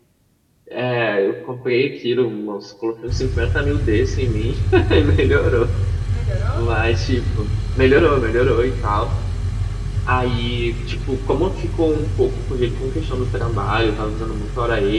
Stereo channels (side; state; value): both; identical; correlation 1.00